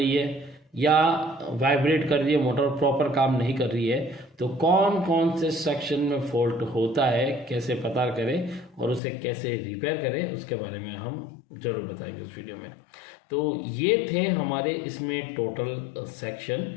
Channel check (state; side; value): drops out; right; at 9.0 s